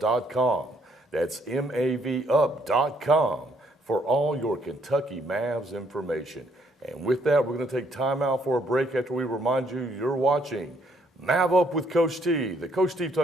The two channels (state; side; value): normal; both; correlation 0.69